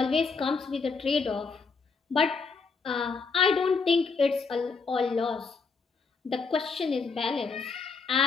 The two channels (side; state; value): right; quieter; 4.8 dB